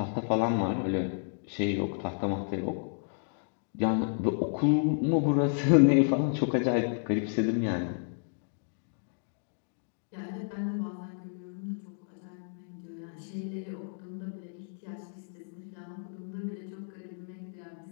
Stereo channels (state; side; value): silent; right; digital silence